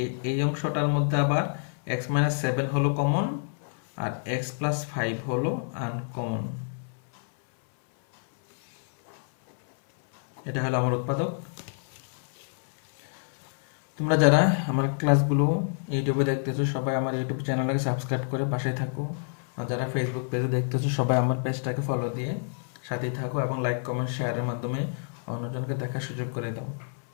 এই অংশটার মধ্যে আবার এক্স মাইনাস 7 হলো কমন, আর এক্স প্লাস 5 হলো আনকমন। এটা হলো আমার উৎপাদক। তোমরা যারা আমার ক্লাসগুলো ইউটিউবে দেখতেছো সবাই আমার ইউটিউব চ্যানেলটাকে সাবস্ক্রাইব করে পাশে থাকো, আর যারা ফেসবুক পেজে দেখতেছো সবাই আমার পেজটাকে ফলো দিয়ে সাথেই থাকো এবং লাইক কমেন্ট শেয়ারের মাধ্যমে অন্যজনকে দেখার সুযোগ করে দাও।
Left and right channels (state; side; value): silent; right; 57 dB below the other